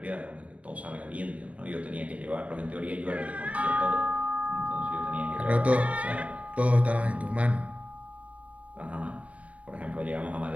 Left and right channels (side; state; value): left; late; 0.067 ms